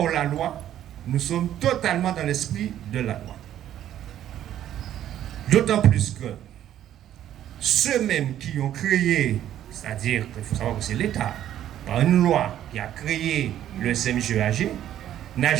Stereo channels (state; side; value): quieter; left; 11.5 dB